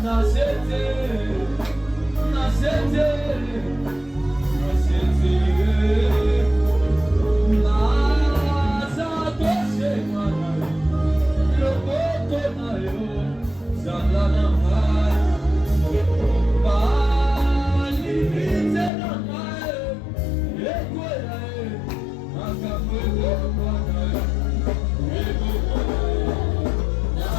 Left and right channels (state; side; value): drops out; right; at 18.9 s